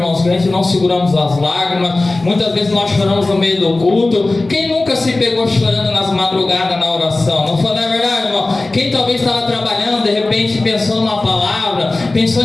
que a gente não seguramos as lágrimas. Muitas vezes nós choramos no meio do culto. Quem nunca se pegou chorando nas madrugadas na oração? Não foi, não é verdade, irmão? Quem talvez estava trabalhando, de repente pensando na palavra,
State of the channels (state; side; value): quieter; right; 3.1 dB